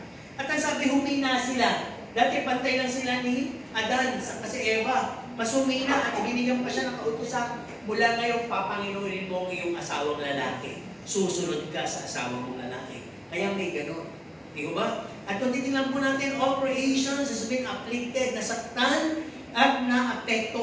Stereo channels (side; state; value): both; identical; correlation 1.00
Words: At ang sabi, humina sila. Dati pantay lang sila ni Adan, kasi Eva. Mas humina at binigyan pa siya ng kautusan. Mula ngayon, papanginuhin mo ang iyong asawang lalaki. Susunod ka sa asawa mong lalaki. Kaya may ganun. Di ba? At kung titignan po natin, all creations has been afflicted, nasaktan at